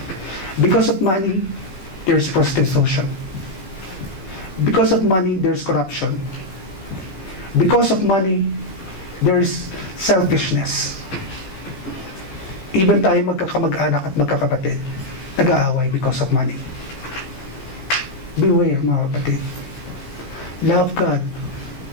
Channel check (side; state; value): right; late; 16 ms